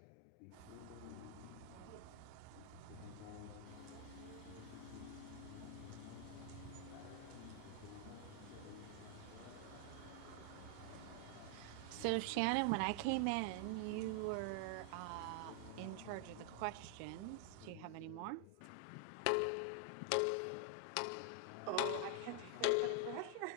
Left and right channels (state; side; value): different; both; correlation 0.00